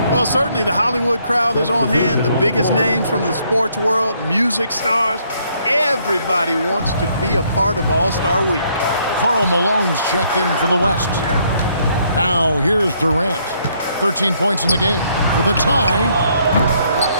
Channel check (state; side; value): inverted; both; correlation -0.69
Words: Well, certainly the Hollywood crowd is on hand, the biggest names from the sports world, music stars. Everybody wants to be a part of All-Star Week. Karl Malone's checked in for the West. Now here's Durant. 13 points in the game for the tie.